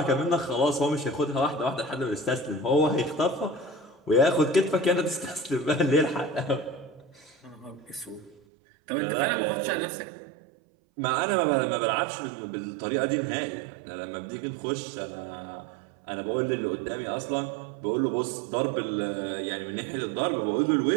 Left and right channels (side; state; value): left; drops out; at 8.4 s